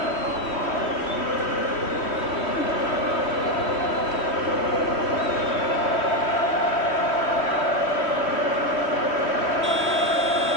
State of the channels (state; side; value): late; right; 3.1 ms